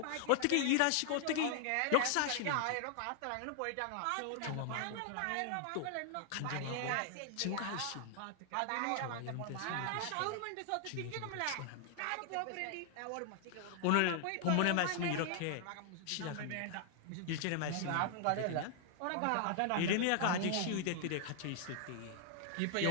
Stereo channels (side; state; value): both; different; correlation 0.00